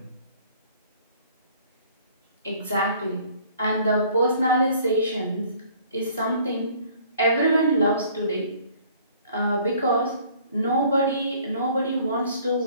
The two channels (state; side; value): inverted; both; correlation -0.55